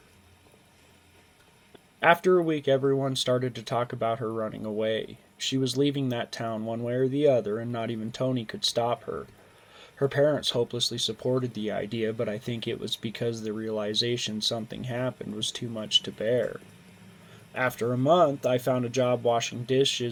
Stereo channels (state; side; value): identical; both; correlation 1.00